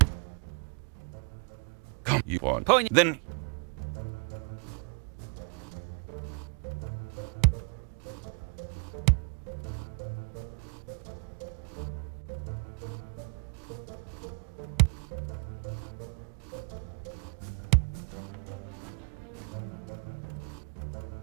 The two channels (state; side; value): quieter; left; 37.0 dB